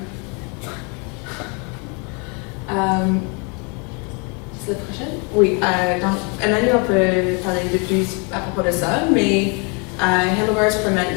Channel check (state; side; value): quieter; right; 33.8 dB